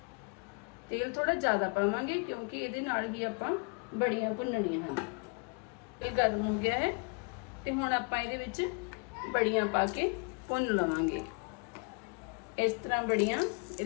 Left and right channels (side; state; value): right; quieter; 34.9 dB